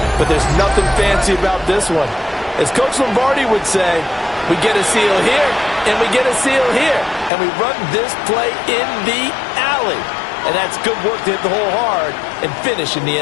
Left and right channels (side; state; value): right; drops out; at 7.3 s